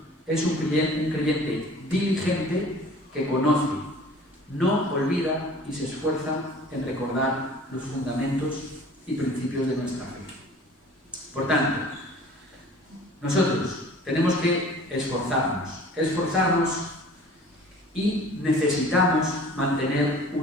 es un creyente diligente que conoce, no olvida y se esfuerza en recordar los fundamentos y principios de nuestra fe. Por tanto, nosotros tenemos que esforzarnos y necesitamos mantener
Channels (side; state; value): both; normal; correlation 0.47